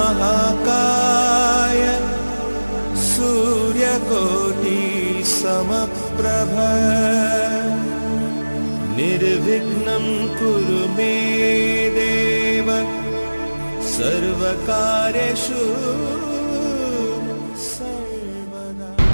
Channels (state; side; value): inverted; both; correlation -1.00